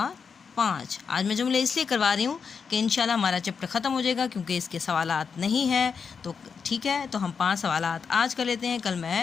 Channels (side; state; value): right; quieter; 5.9 dB